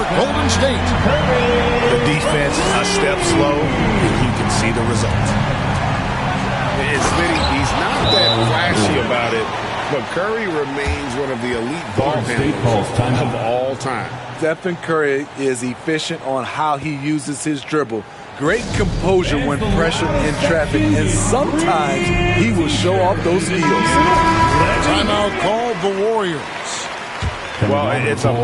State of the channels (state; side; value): identical; both; correlation 1.00